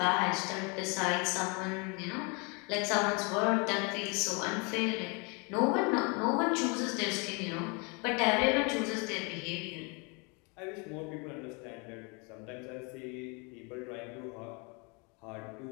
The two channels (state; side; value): quieter; right; 31.8 dB